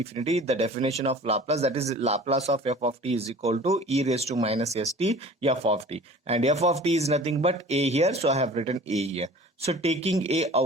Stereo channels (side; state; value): both; normal; correlation 0.44